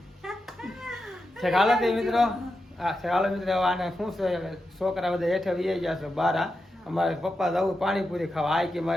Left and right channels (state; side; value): normal; both; correlation 0.89